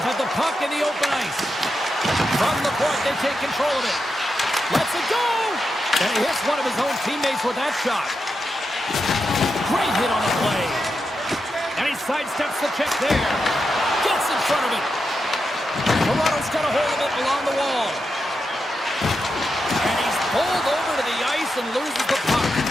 have the puck in the open ice. From the point, they take control of it. Lets it go! And he hits one of his own teammates with that shot. Great hit on the play. And he sidesteps the check there. Gets in front of it. Toronto's got a hold of it along the wall. And he's pulled over to the ice and loses the puck.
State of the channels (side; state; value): both; normal; correlation 0.87